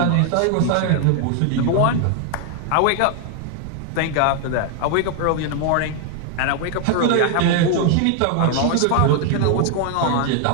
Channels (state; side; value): different; both; correlation 0.00